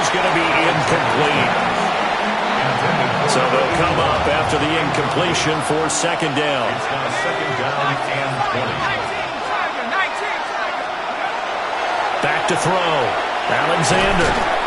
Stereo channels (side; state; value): both; identical; correlation 1.00